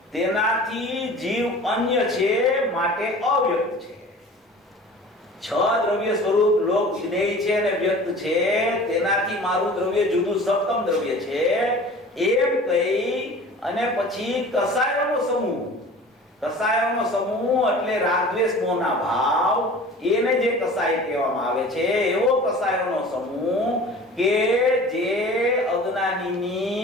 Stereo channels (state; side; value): normal; both; correlation 0.42